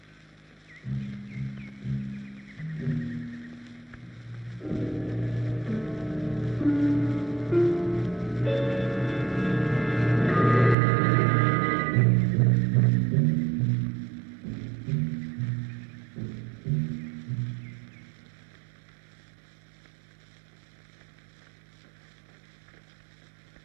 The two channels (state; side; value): drops out; left; at 10.8 s